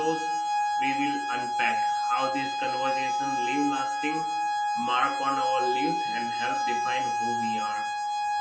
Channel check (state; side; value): identical; both; correlation 1.00